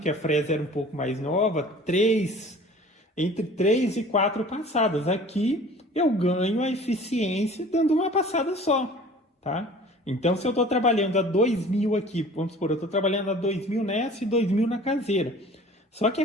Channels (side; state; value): both; normal; correlation 0.46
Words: a fresa era um pouco mais nova, entre 3 e 4 passadas. Aqui eu ganho a eficiência dando uma passada só, tá? Então, se eu estou trabalhando a 2.000 aqui, vamos supor, eu estou trabalhando a 2.000 nessa e 2.000 na caseira. Só que a